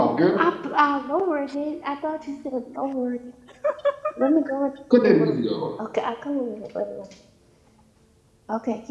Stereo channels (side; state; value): both; identical; correlation 1.00